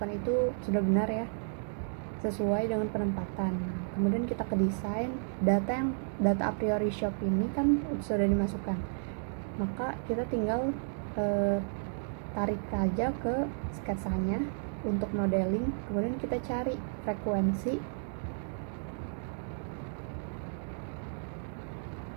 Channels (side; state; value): left; silent; digital silence